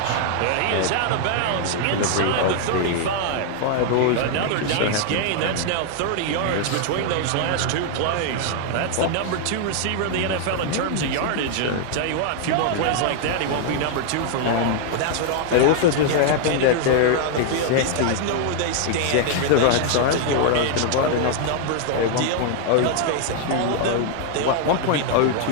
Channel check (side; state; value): both; different; correlation 0.00